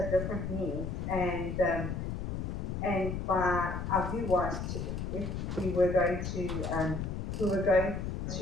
different needs, and by our view was if we were going to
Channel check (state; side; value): noise; left; rumble, 3 dB below the sound